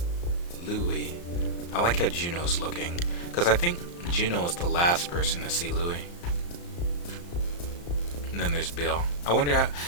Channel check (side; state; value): right; late; 34 ms